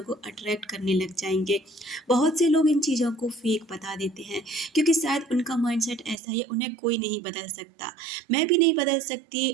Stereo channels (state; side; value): drops out; left; at 6.2 s